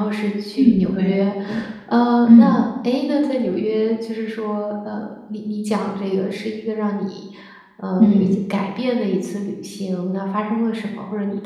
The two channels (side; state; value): both; identical; correlation 1.00